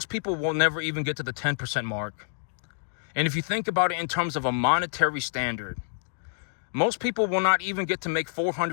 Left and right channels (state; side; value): silent; right; digital silence